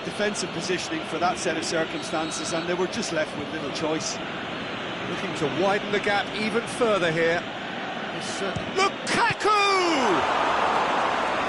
defensive positioning for that set of circumstances, and they were just left with little choice. Looking to widen the gap even further here. Lukaku!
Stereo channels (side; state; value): both; identical; correlation 1.00